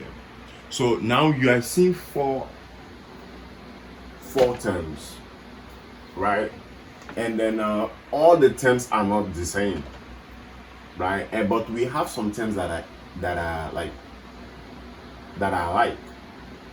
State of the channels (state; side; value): identical; both; correlation 1.00